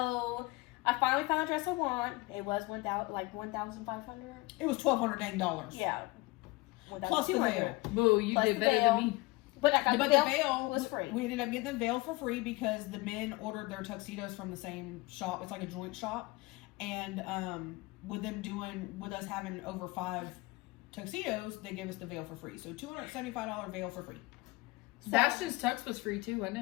I finally found a dress I want. It was $1,500. It was $1,200 dang. Yeah. Plus the veil. Boo, you Plus did the better veil. than me. But I got But the the veil was free. We ended up getting the veil for free because the men ordered their tuxedos from the same shop. It's like a joint shop. And with us having over 5 tuxedos, they gave us the veil for free. So $275 veil for free. Sebastian's tux was free too, wasn't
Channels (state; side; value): quieter; right; 22.6 dB